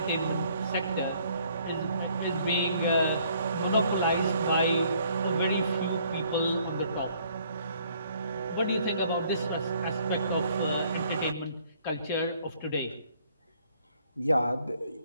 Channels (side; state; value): both; inverted; correlation -0.63